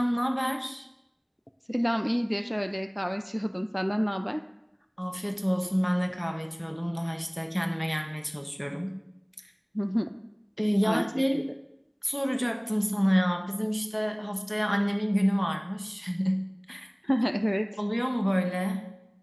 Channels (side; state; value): both; identical; correlation 1.00